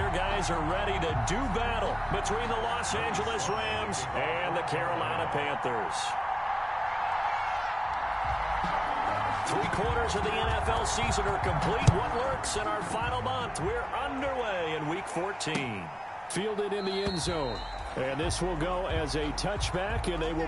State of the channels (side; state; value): both; identical; correlation 1.00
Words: guys are ready to do battle between the Los Angeles Rams and the Carolina Panthers. 3/4 of the NFL season are complete. What lurks in our final month? We're underway in Week 14. Fielded in the end zone. And this will go as a touchback, and they will